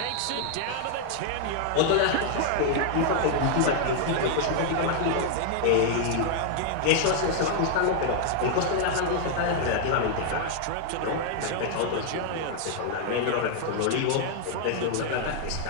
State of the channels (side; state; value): both; different; correlation -0.01